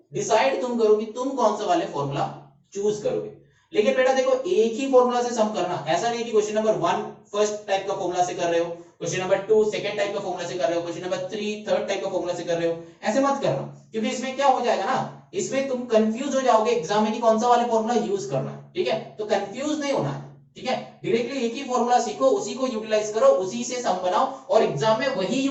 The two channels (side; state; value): both; identical; correlation 1.00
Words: डिसाइड तुम करो कि तुम कौन सा वाले फॉर्मूला चूज करोगे। लेकिन बेटा देखो एक ही फॉर्मूला से सम करना, ऐसा नहीं कि क्वेश्चन नंबर 1 फर्स्ट टाइप का फॉर्मूला से कर रहे हो, क्वेश्चन नंबर 2 सेकंड टाइप का फॉर्मूला से कर रहे हो, क्वेश्चन नंबर 3 थर्ड टाइप का फॉर्मूला से कर रहे हो, ऐसे मत करना, क्योंकि इसमें क्या हो जाएगा ना, इसमें तुम कंफ्यूज हो जाओगे एग्जाम में कि कौन सा वाले फॉर्मूला यूज करना है, ठीक है। तो कंफ्यूज नहीं होना है, ठीक है, डायरेक्टली एक ही फॉर्मूला सीखो, उसी को यूटिलाइज करो, उसी से सम बनाओ और एग्जाम में वही